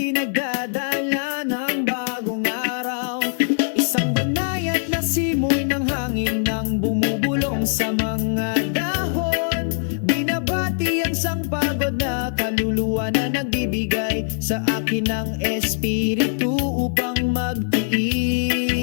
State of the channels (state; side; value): silent; right; digital silence